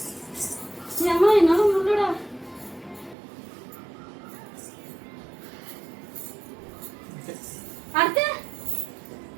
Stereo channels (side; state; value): left; drops out; at 3.2 s